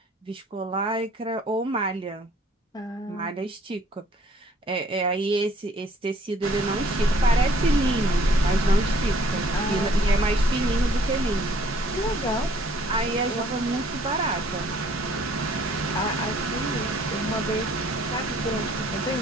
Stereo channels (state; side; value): normal; both; correlation 0.59